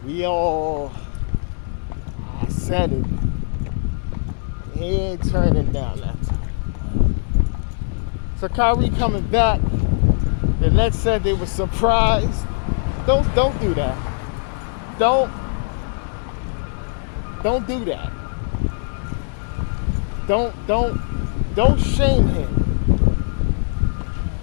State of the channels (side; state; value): right; silent; 63 dB below the other